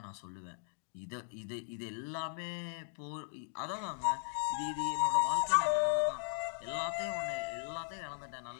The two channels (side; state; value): right; silent; digital silence